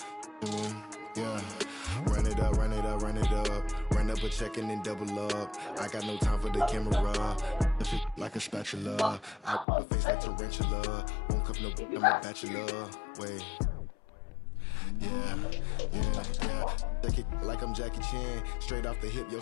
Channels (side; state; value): right; drops out; at 9.7 s